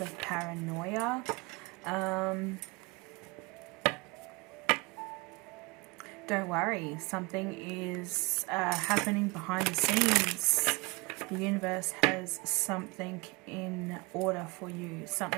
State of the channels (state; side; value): quieter; left; 26.6 dB